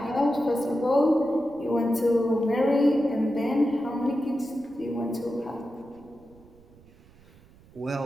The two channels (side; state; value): right; noise; rumble, 26 dB below the sound